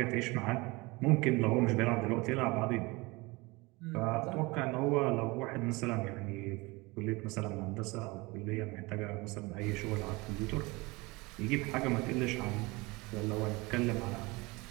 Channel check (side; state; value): left; quieter; 24.1 dB